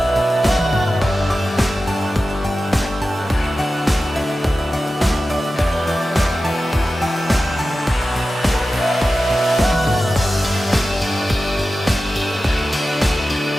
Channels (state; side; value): normal; both; correlation 0.94